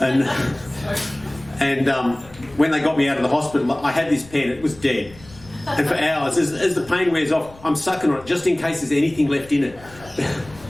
when they got me out of the hospital, I had this pen. It was dead. And for hours, as the pain wears off, I'm sucking on it just in case there's anything left in it.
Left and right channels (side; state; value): left; noise; rumble, 22 dB below the sound